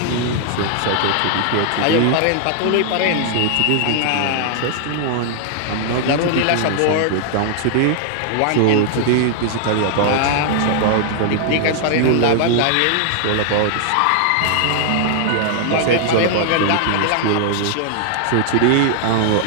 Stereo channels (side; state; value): both; different; correlation 0.00